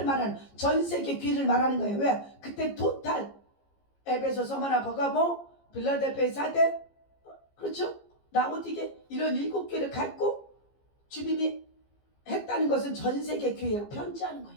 말하는 전 세계 교회를 말하는 거예요. 왜? 그때 토탈 에베소, 서머나, 버가모, 빌라델피아, 사대 그렇죠? 라오디게 이런 일곱 교회를 갖고 주님이 했다는 것은 전 세계 교회로 편지하는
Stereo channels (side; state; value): right; late; 15 ms